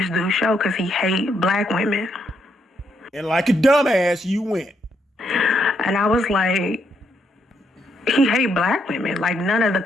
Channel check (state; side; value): normal; both; correlation 0.76